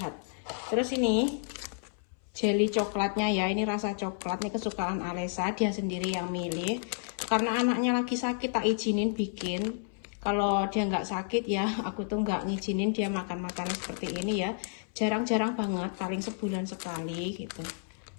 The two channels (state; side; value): silent; right; 57 dB below the other